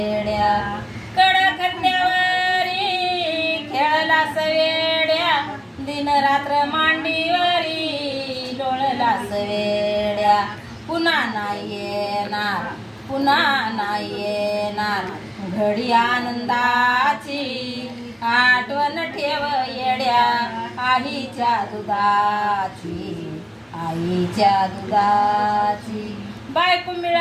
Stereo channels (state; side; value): identical; both; correlation 1.00